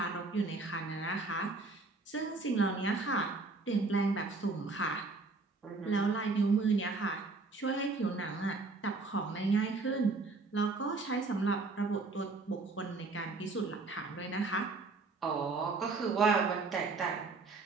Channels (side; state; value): left; quieter; 3.8 dB